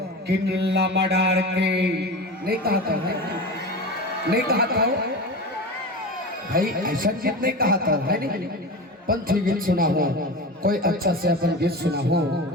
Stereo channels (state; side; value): normal; both; correlation 0.28